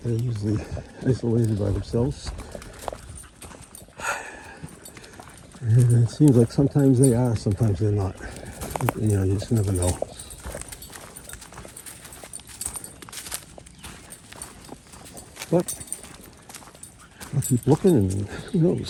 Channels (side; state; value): both; identical; correlation 1.00